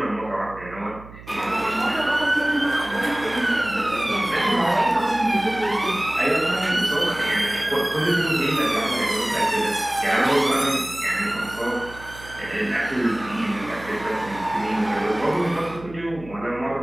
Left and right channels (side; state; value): right; noise; hum, 17 dB below the sound